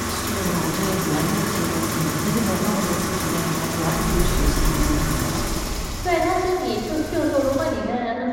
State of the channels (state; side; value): identical; both; correlation 1.00